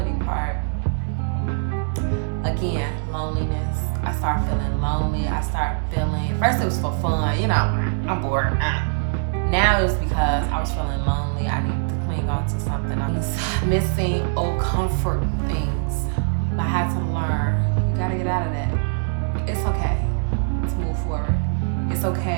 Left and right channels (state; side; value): silent; left; digital silence